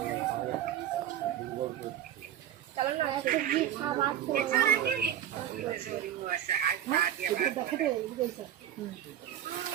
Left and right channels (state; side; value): quieter; left; 10.9 dB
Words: চলো না সবজি খাবার